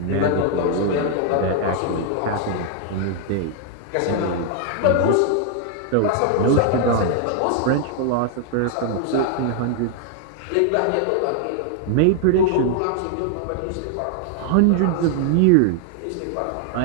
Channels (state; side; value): different; both; correlation 0.00